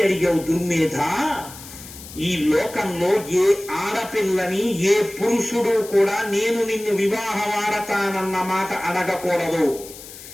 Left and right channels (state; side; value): noise; left; hiss, 15 dB below the sound